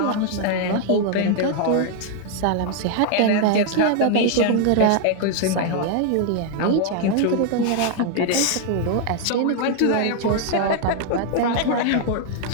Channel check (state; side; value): different; both; correlation 0.00